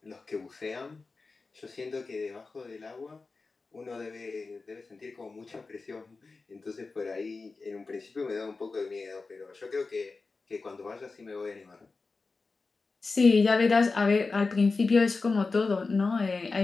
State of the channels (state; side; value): quieter; right; 4.0 dB